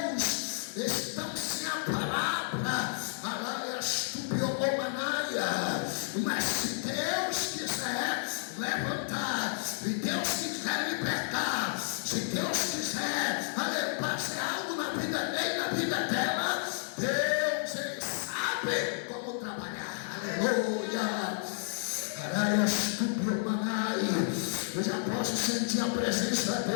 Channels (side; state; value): right; silent; digital silence